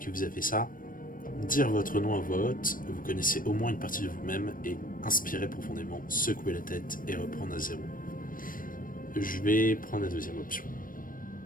vous a fait ça, dire votre nom à voix haute, vous connaissez au moins une partie de vous-même, et inspirer profondément, secouer la tête et reprendre à zéro. Je vais prendre la deuxième option.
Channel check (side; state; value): right; late; 0.40 ms